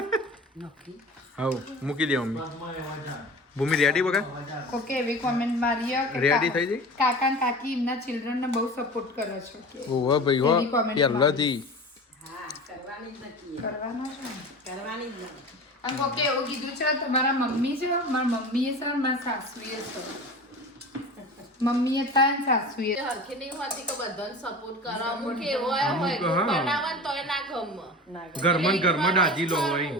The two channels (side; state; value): both; normal; correlation 0.34